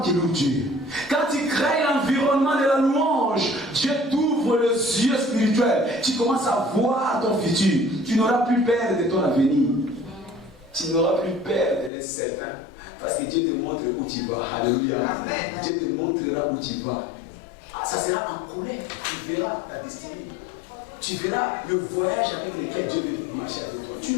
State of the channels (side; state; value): right; drops out; at 11.9 s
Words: qui loue Dieu. Quand tu crées l'environnement de la louange, Dieu t'ouvre les yeux spirituels. Tu commences à voir ton futur. Tu n'auras plus peur de ton avenir. Tu n'auras plus peur de l'incertain. Parce que Dieu te montre où tu vas. Alléluia. Amen. Dieu te montrera où tu vas. Ça sera en colère. Tu verras ta destinée. Tu verras le voyage avec lequel Dieu veut marcher avec toi. Tu